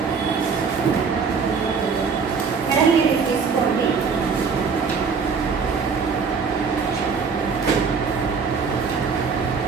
మేడం మీరు తీసుకోండి.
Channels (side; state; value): left; quieter; 5.5 dB